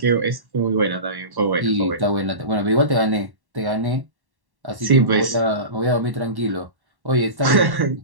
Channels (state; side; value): late; left; 1.1 ms